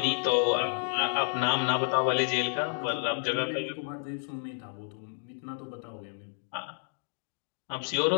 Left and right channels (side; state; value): right; silent; digital silence